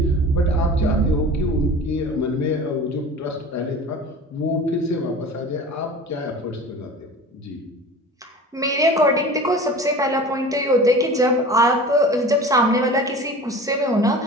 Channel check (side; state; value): both; normal; correlation 0.38